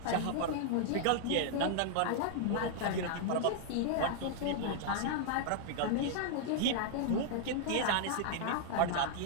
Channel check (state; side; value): different; both; correlation -0.01